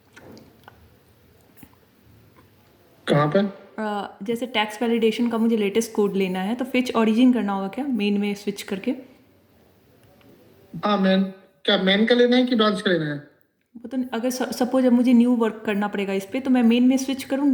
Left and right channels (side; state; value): both; identical; correlation 1.00